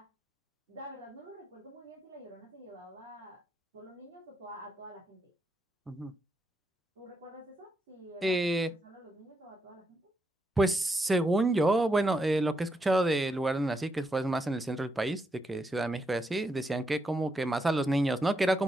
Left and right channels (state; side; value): normal; both; correlation 0.82